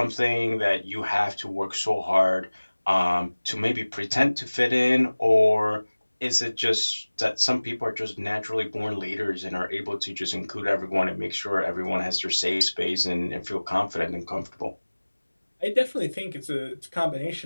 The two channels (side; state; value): both; inverted; correlation -1.00